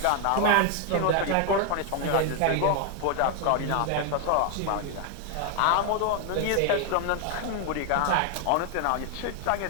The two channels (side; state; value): both; different; correlation 0.01